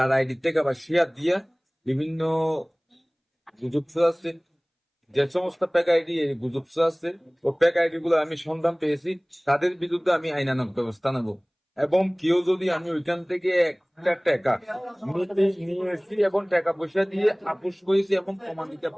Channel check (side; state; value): both; identical; correlation 1.00